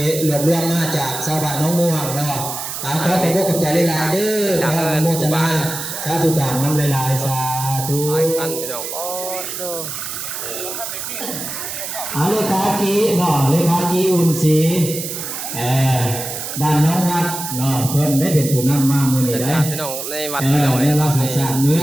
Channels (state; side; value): noise; right; hiss, 6 dB below the sound